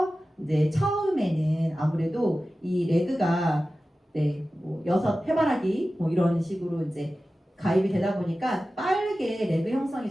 이제 처음에는 아무래도 이 레그가 네, 뭐 6 해바라기 뭐 이런 식으로 이제 가입이 되다 보니까 빠르게 레그 형성이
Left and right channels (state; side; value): normal; both; correlation 0.95